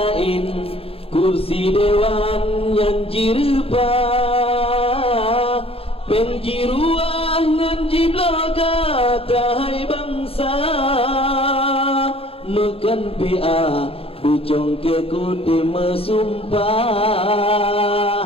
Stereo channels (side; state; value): right; late; 0.27 ms